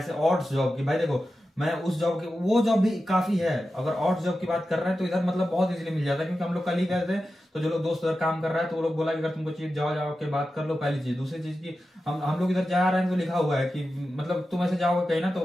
ऑड्स जॉब की, भाई देखो मैं उस जॉब की, वो जॉब भी काफी है। अगर ऑड्स जॉब की बात कर रहे हैं तो इधर मतलब बहुत इजीली मिल जाता है, क्योंकि हम लोग कल ही गए थे तो जो लोग दोस्त उधर काम कर रहा है तो वो लोग बोला कि अगर तुमको चाहिए जाओ के बात कर लो, पहली चीज। दूसरी चीज की हम लोग इधर जा रहे हैं तो लिखा हुआ है कि मतलब तुम ऐसे जाओगे कहीं ना तो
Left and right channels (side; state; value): both; normal; correlation 0.92